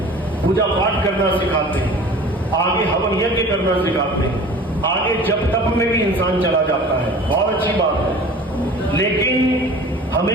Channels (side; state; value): both; normal; correlation 0.42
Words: पूजा पाठ करना सिखाते हैं, आगे हवन यज्ञ करना सिखाते हैं, आगे जप तप में भी इंसान चला जाता है, बहुत अच्छी बात है। लेकिन हमें